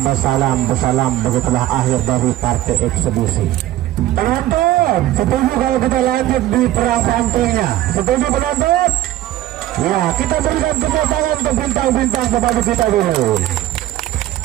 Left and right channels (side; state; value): left; quieter; 14.2 dB